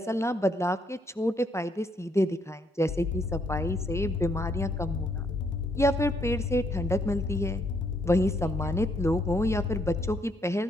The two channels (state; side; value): normal; both; correlation 0.71